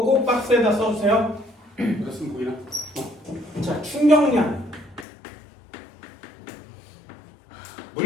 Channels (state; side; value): drops out; right; at 5.1 s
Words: 꼭 박스에다 써주세요. 그랬으면 보이나? 자, 충격량.